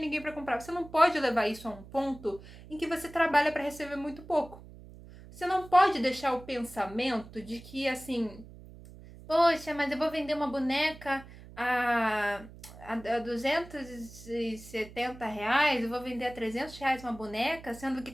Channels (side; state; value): right; noise; hum, 18 dB below the sound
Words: ninguém pra comprar. Você não pode levar isso a um ponto em que você trabalha pra receber muito pouco. Você não pode deixar o pensamento de que, assim, poxa, mas eu vou vender uma boneca a, a R$ 270, eu vou vender a R$ 300 uma boneca, sendo que